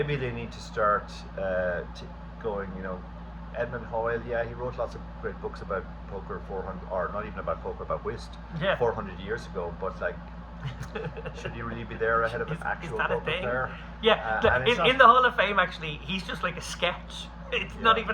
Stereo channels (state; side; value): identical; both; correlation 1.00